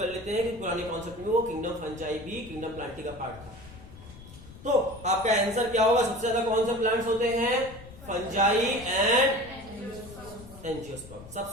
लेते हैं कि पुराने कॉन्सेप्ट में वो किंगडम फंजाई भी किंगडम प्लांटी का पार्ट था। तो आपका आंसर क्या होगा, सबसे ज्यादा कौन से प्लांट्स होते हैं, फंजाई एंड एंजियोस्पर्म,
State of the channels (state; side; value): noise; left; rumble, 17 dB below the sound